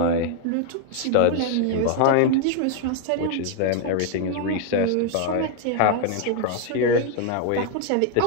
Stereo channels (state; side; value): different; both; correlation 0.00